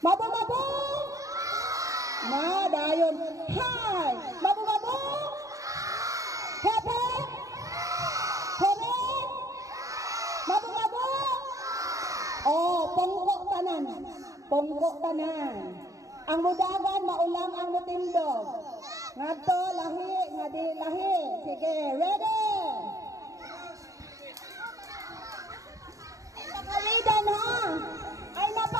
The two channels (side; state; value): left; late; 0.16 ms